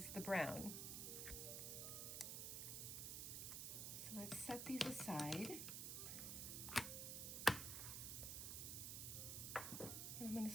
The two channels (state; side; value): noise; right; hiss, 2 dB below the sound